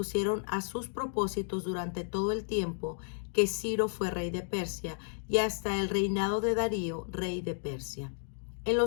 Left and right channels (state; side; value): silent; right; digital silence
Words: a sus propósitos durante todo el tiempo que Ciro fue rey de Persia y hasta el reinado de Darío, rey de Persia. En